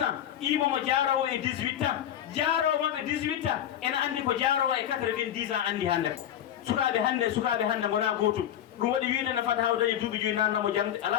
imomo jaarowo e 18 ans jaarowo maɓe 18 ans ene andi ko jaarowo e 90 ans andi hande ko sukaɓe hande gona gotum ɗum waɗi wiide ne fata hawdañe duuɓi joyi nannamo jangde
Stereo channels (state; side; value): quieter; right; 10.8 dB